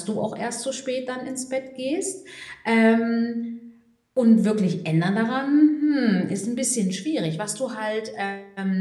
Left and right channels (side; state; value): both; identical; correlation 1.00